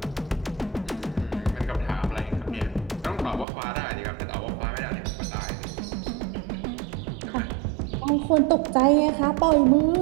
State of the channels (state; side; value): drops out; left; at 3.5 s